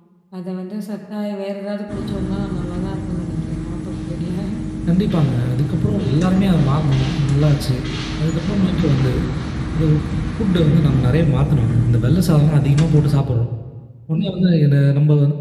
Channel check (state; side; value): identical; both; correlation 1.00